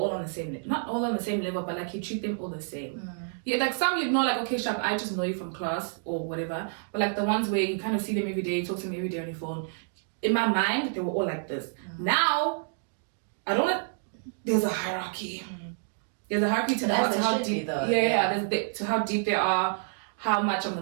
on the same, not all on the same level, but like you treat them all the same. Yeah, like some you'd know, like, okay, Shab, I just know you from class or whatever. But like the ones where you kind of see them every day, talk to them every day on your phone. In my mind, they were all like this. Now, there's a hierarchy. There's a hierarchy to how deep. To how deep they are, how much I'm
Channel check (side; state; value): left; silent; digital silence